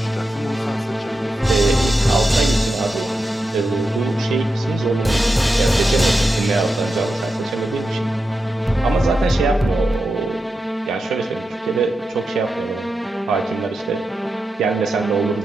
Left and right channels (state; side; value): normal; both; correlation 0.89